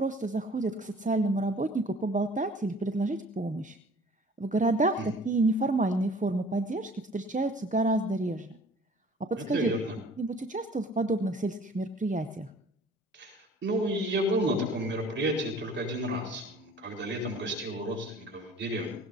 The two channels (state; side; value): normal; both; correlation 0.50